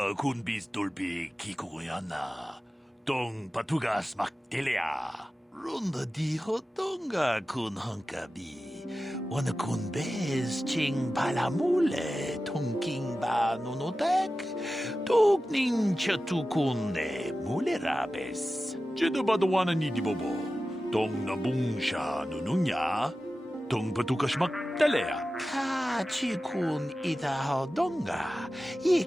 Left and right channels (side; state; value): both; normal; correlation 0.94